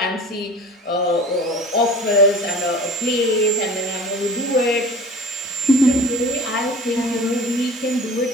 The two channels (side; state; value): both; normal; correlation 0.40